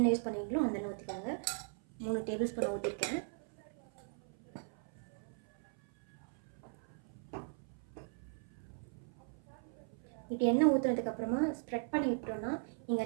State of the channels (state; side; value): silent; left; 52 dB below the other